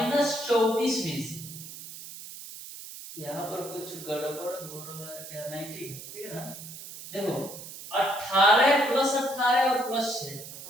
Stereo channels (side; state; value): right; noise; hiss, 13 dB below the sound